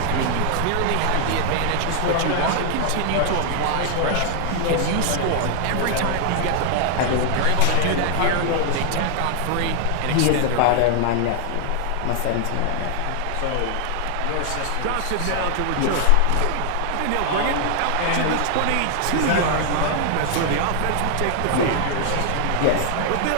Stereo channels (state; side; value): different; both; correlation 0.00